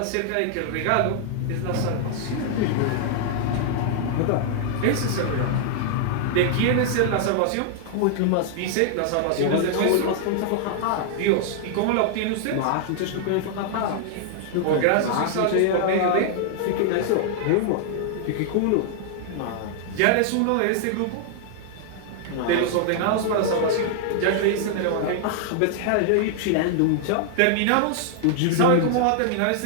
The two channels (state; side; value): different; both; correlation -0.01